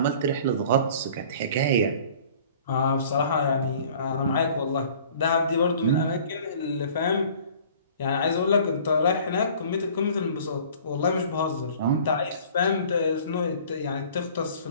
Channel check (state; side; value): inverted; both; correlation -0.49